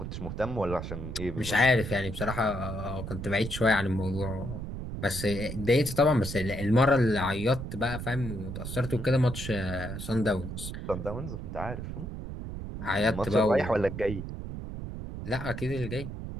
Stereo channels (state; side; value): noise; right; rumble, 7 dB below the sound